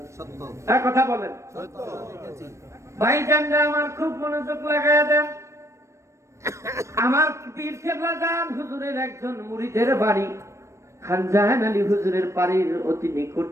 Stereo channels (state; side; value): late; left; 0.14 ms